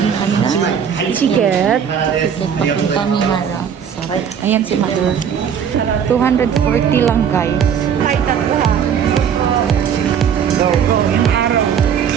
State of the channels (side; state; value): left; quieter; 7.9 dB